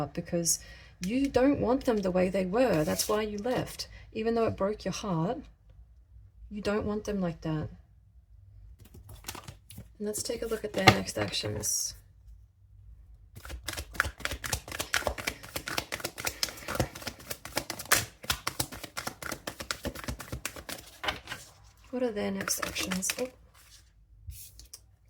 because you don't want them the way they were. That's why you left. Even though it broke your heart, you don't want them like that. And let's take a look at their next actions. What are their next actions? Oh.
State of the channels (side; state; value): both; identical; correlation 1.00